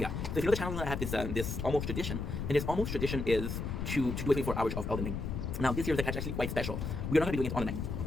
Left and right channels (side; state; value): left; noise; rumble, 3 dB below the sound